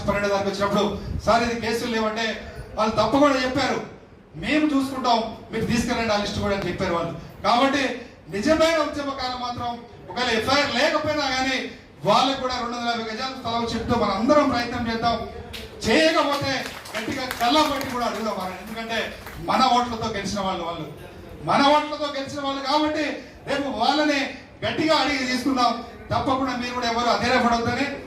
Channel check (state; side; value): identical; both; correlation 1.00